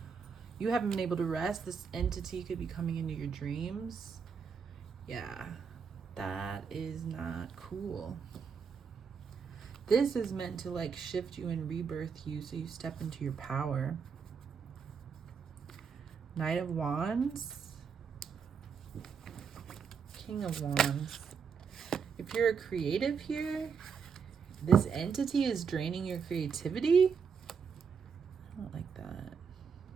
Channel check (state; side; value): quieter; left; 6.2 dB